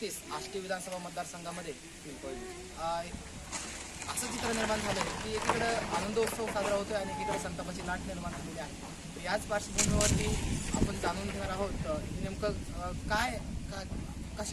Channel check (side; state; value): both; identical; correlation 1.00